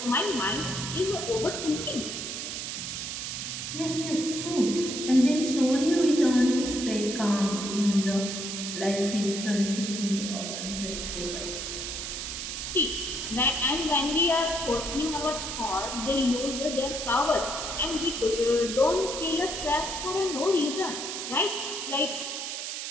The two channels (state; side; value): noise; right; hiss, 5 dB below the sound